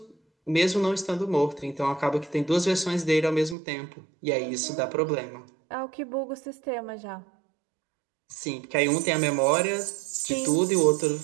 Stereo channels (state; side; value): drops out; left; at 3.6 s